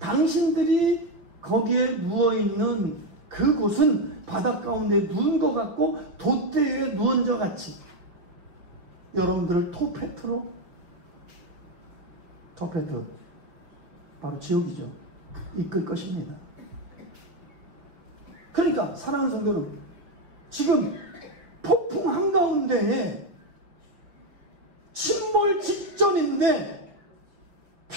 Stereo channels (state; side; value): late; left; 5.7 ms